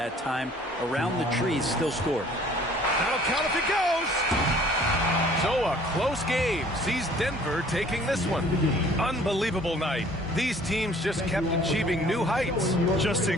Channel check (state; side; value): normal; both; correlation 0.54